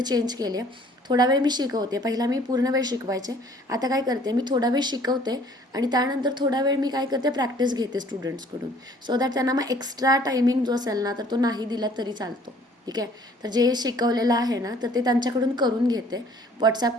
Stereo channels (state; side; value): normal; both; correlation 0.56